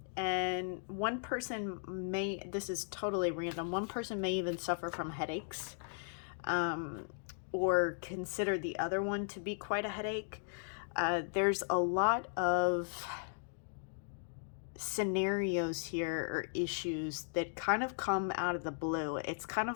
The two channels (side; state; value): right; silent; digital silence